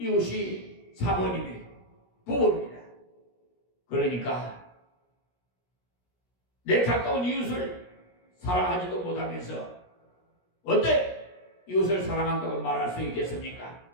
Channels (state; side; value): late; right; 17 ms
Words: 사모님이 부부입니다. 그러니까 내 가까운 이웃을 사랑하지도 못하면서 어때 이웃을 사랑한다고 말할 수 있겠습니까?